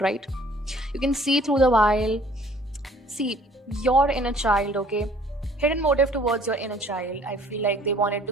right? You can see through the wild. See, your inner child, okay? Hidden motive towards your inner child. I feel like they wanted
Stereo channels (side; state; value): both; normal; correlation 0.56